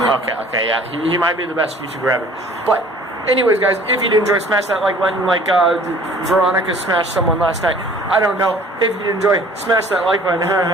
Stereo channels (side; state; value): both; normal; correlation 0.51